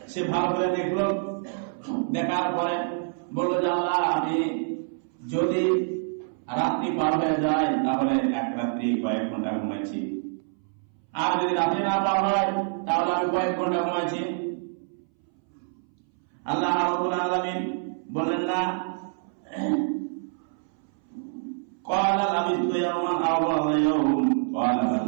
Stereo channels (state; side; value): silent; left; 60 dB below the other